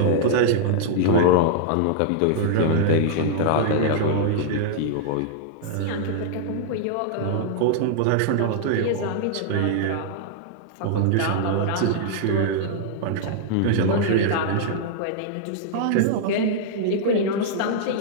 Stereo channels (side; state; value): both; different; correlation -0.01